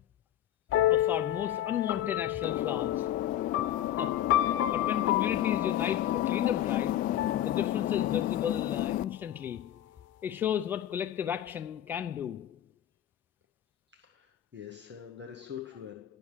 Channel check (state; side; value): quieter; right; 11.8 dB